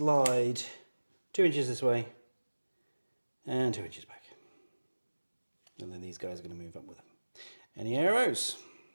2 inches this way and 2 inches back. And then these guys are going to move up with him. Any arrows?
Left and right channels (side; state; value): both; inverted; correlation -1.00